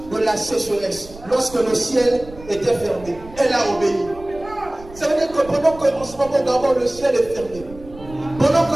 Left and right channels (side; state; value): right; noise; rumble, 18 dB below the sound